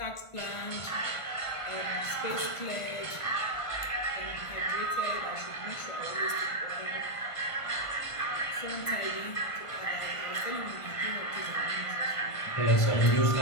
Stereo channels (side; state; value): right; late; 1.5 ms